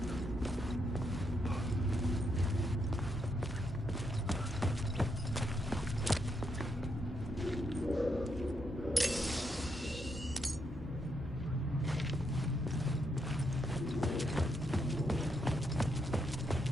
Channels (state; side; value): normal; both; correlation 0.79